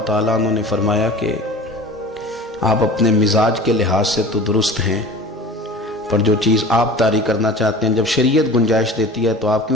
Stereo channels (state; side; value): normal; both; correlation 0.39